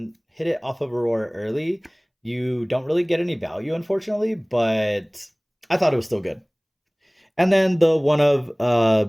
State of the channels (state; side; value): identical; both; correlation 1.00